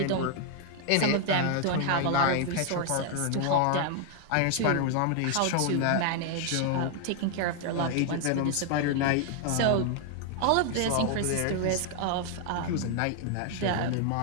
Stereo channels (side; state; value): both; different; correlation 0.00